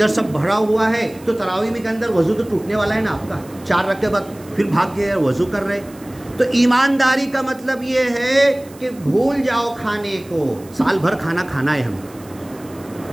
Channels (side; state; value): right; noise; hiss, 24 dB below the sound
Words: سب بھرا ہوا ہے، تو تراویح میں کے اندر وضو تو ٹوٹنے والا ہے نا آپ کا. 4 رکعت کے بعد پھر بھاگ کے وضو کر رہے. تو ایمانداری کا مطلب یہ ہے کہ بھول جاؤ کھانے کو. سال بھر کھانا کھانا ہے